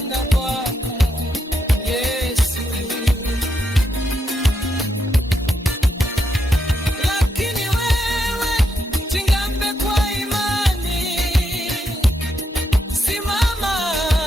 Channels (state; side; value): normal; both; correlation 0.81